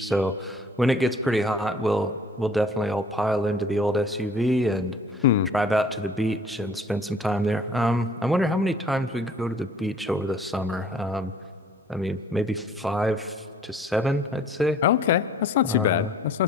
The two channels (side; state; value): both; normal; correlation 0.52